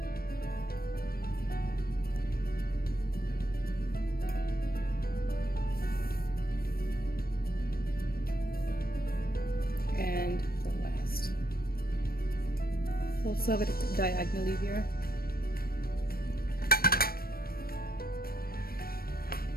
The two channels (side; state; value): right; late; 0.44 ms